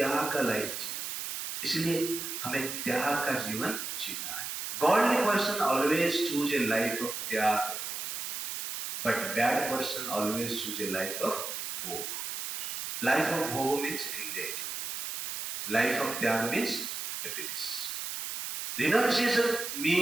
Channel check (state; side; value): noise; right; hiss, 5 dB below the sound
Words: का लाइफ जी। इसलिए हमें त्याग का जीवन जीना है। Godly person always choose a life of त्याग, but bad person always choose a life of भोग। लाइफ ऑफ भोग मीन्स एंग्जाइटी, लाइफ ऑफ त्याग means happiness. Renunciation